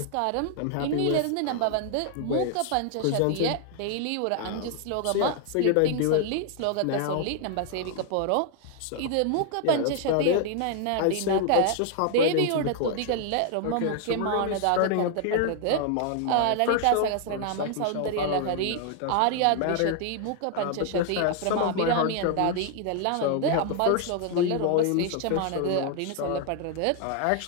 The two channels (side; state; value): both; different; correlation 0.00